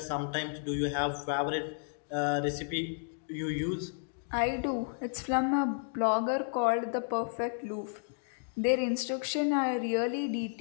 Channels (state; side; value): silent; right; digital silence